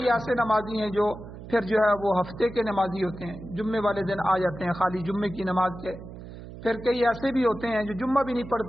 ایسے نمازی ہیں جو پھر جو ہے وہ ہفتے کے نمازی ہوتے ہیں، جمعے والے دن آ جاتے ہیں خالی جمعے کی نماز کے. پھر کئی ایسے بھی ہوتے ہیں جو جمعہ بھی نہیں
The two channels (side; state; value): right; noise; hum, 13 dB below the sound